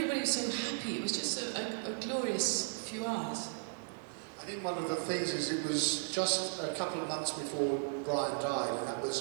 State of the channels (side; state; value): left; silent; 54 dB below the other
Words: was so happy. It was just a glorious few hours. I think one of the things is it was just a couple of months before Brian died, and that